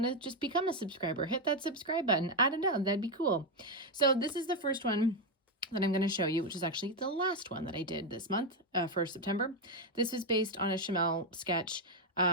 to just become a subscriber. Hit that subscribe button. I don't know, that'd be cool. So this is the first one that I'm going to show you, which is actually the last one that I did this month for September. This was based on a Chamel sketch,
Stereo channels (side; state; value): both; normal; correlation 0.05